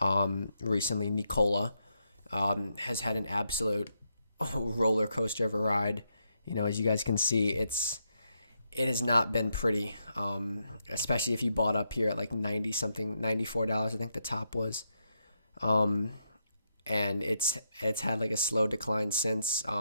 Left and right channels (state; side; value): inverted; both; correlation -0.81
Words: Recently, NKLA has had an absolute roller coaster of a ride. As you guys can see, it has not been pretty, especially if you bought up here at like 90 something, $94, I think the top was. And it's had like a slow decline since.